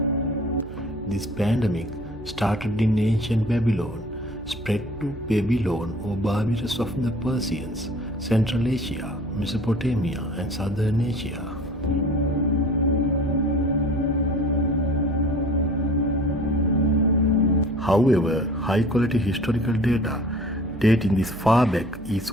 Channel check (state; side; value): noise; right; hum, 16 dB below the sound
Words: This pandemic started in ancient Babylon, spread to Babylon or Barbarus of the Persians, Central Asia, Mesopotamia and Southern Asia. However, high-quality historical data dating this far back is